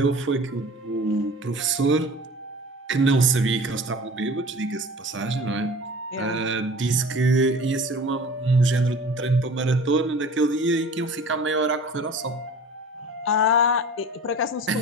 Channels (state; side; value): normal; both; correlation 0.41